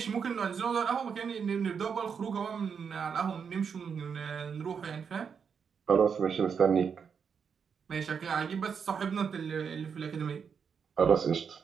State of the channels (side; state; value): left; quieter; 6.5 dB